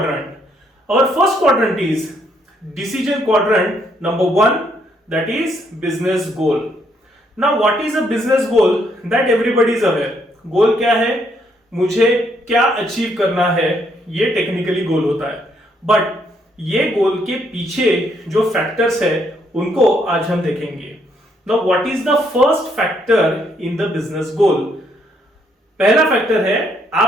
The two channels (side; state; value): both; normal; correlation 0.72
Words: Our first quadrant is decision quadrant number 1, that is business goal. Now what is a business goal? That everybody is aware. Goal क्या है? मुझे क्या अचीव करना है, ये टेक्निकली गोल होता है। बट ये गोल के पीछे जो फैक्टर्स है उनको आज हम देखेंगे। Now, what is the first factor in the business goal? पहला फैक्टर है